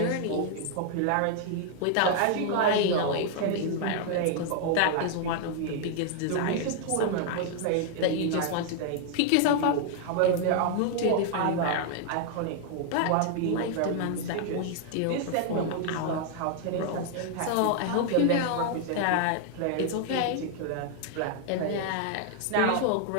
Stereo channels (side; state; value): both; different; correlation 0.00